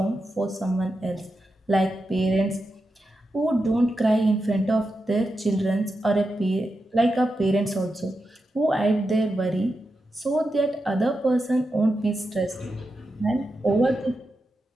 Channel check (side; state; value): both; normal; correlation 0.88